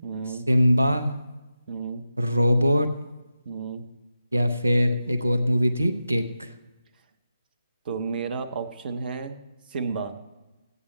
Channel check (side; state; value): both; inverted; correlation -0.90